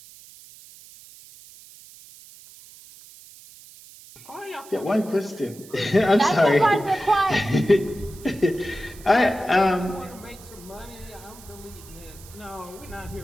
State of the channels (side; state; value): right; noise; hiss, 20 dB below the sound